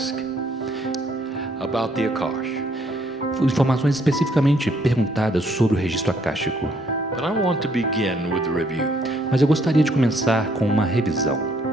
about the Akash. Informações especificamente perguntadas sobre o registro akáshico. But I want to begin with the review. Mas eu gostaria de começar com uma revisão.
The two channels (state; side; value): normal; both; correlation 0.67